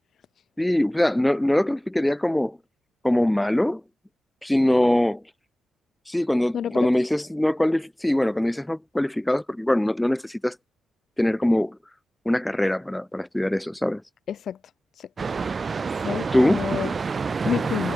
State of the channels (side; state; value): both; normal; correlation 0.97